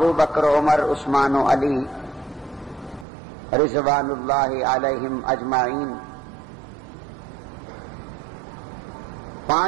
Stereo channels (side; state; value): left; drops out; at 3.1 s